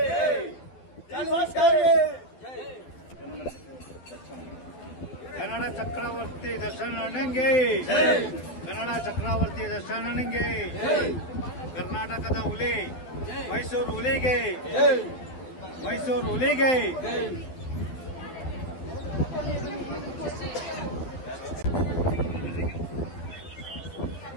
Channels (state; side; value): late; right; 12 ms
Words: बस के ಕನ್ನಡ ಚಕ್ರವರ್ತಿ ದರ್ಶನ ನನಗೆ, ಕನ್ನಡ ಚಕ್ರವರ್ತಿ ದರ್ಶನ ನನಗೆ, ಕರ್ನಾಟಕದ ಹುಲಿ ಮೈಸೂರು ಹುಲಿಗೆ, ಮೈಸೂರು ಹುಲಿಗೆ.